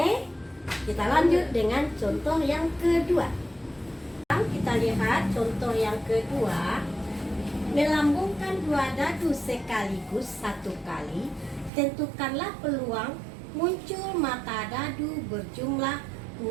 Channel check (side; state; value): left; drops out; at 11.7 s